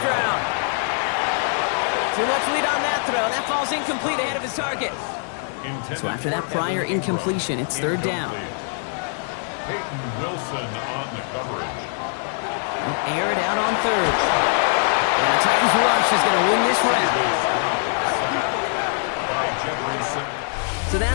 Too much lead on that throw. That falls incomplete ahead of his target. So after that prior incompletion, it's 3rd down. Peyton Wilson on the coverage. They'll air it out on 3rd. And the Titans rush is going to win this round. So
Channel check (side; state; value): right; silent; 64 dB below the other